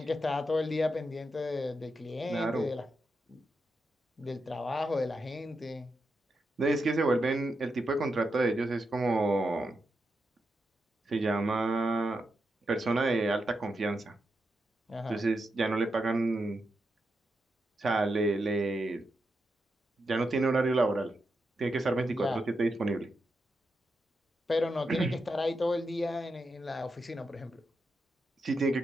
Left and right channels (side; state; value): both; normal; correlation 0.85